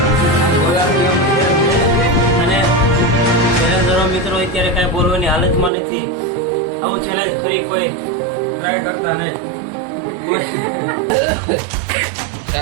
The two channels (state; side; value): drops out; left; at 5.7 s